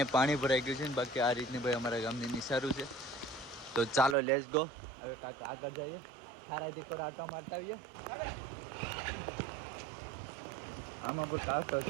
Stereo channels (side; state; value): left; drops out; at 4.2 s